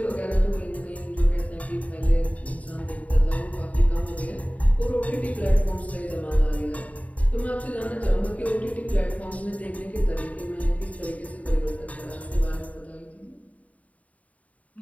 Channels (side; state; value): right; late; 0.069 ms